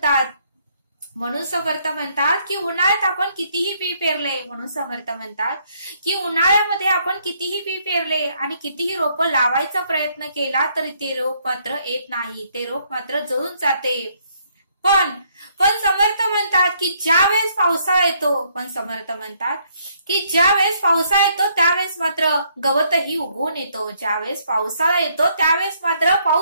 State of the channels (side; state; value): both; inverted; correlation -0.69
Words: म्हणतात की उन्हाळ्यात आपण कितीही बी पेरले, म्हणून समर्थ म्हणतात की उन्हाळ्यामध्ये आपण कितीही बी पेरले आणि कितीही रोप लावायचा प्रयत्न केला तरी ते रोप मात्र येत नाही, ते रोप मात्र जळून जाते. पण समर्थ म्हणतात की ज्या वेळेस पावसाळा येतो, समर्थ म्हणतात की ज्या वेळेस पावसाळा येतो त्यावेळेस मात्र गवतही उगवून येतो. ज्यावेळेस पावसाळा येतो त्यावेळेस मात्र